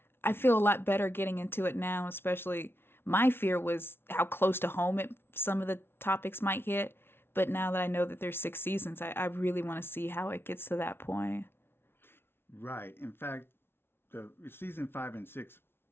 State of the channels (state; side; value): late; right; 0.11 ms